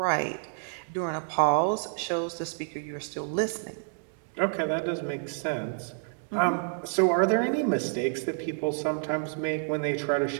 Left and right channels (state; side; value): silent; left; digital silence